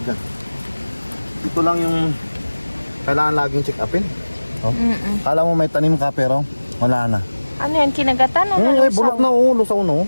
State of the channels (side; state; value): both; inverted; correlation -1.00